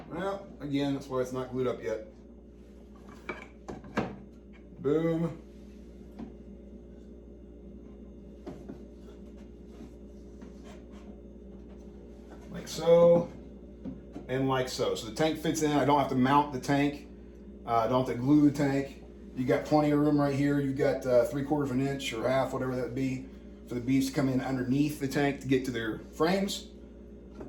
Well, again, that's why it's not glued up yet. Boom. Like so, and like so. So the tank fits in. I don't have to mount the tank. I don't have to glue the tank. You got plenty of room right here. You've got 3/4 inch or half, whatever that would be, for the bees to come in underneath the tank to get to their frames.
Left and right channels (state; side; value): identical; both; correlation 1.00